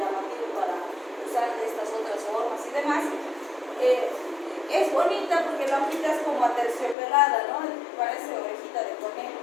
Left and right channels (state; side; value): drops out; right; at 7.0 s